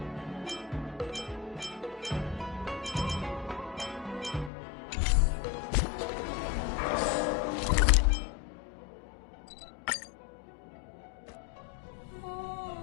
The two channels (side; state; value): right; drops out; at 4.5 s